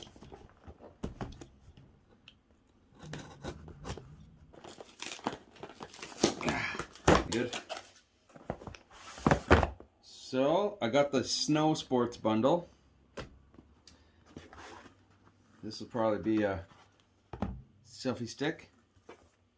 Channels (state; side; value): identical; both; correlation 1.00